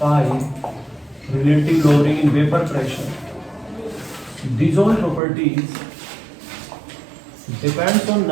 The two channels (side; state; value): left; drops out; at 5.2 s